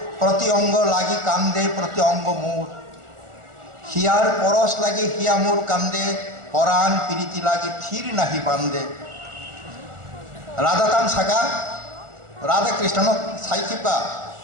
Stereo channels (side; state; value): left; late; 1.4 ms